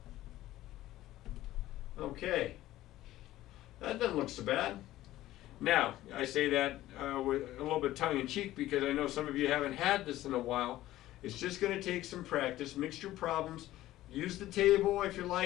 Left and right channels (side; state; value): right; quieter; 15.2 dB